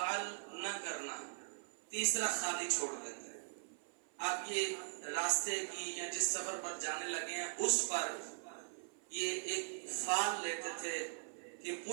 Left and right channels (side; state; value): left; silent; 51 dB below the other